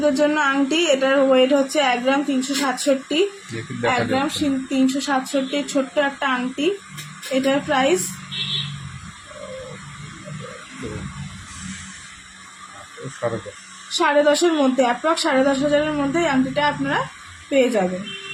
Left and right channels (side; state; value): both; identical; correlation 1.00